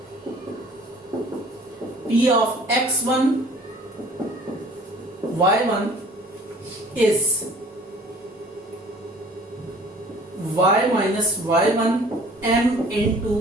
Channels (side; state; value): both; normal; correlation 0.51